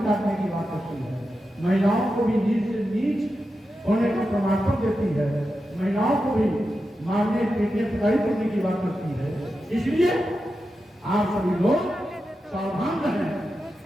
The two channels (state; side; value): normal; both; correlation 0.90